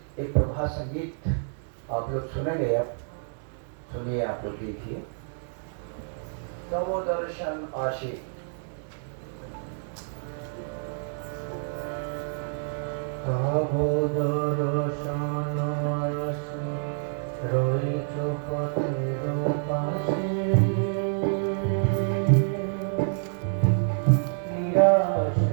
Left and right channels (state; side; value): silent; left; digital silence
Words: एक प्रभात संगीत आप लोग सुनेंगे। अब सुनिए, आप लोग देखिए। नमो दर्शन आशी। नमो दर्शन आशी রয়েছো পথের পাশে, নিরাশ